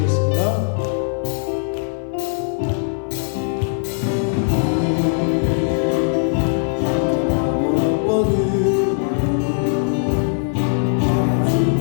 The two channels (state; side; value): silent; right; 59 dB below the other